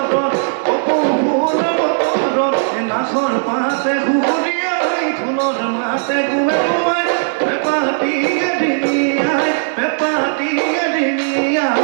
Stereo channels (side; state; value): left; silent; 59 dB below the other